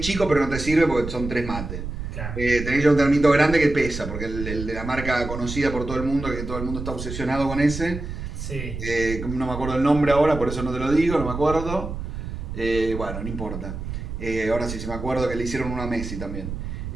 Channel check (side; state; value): right; noise; rumble, 7 dB below the sound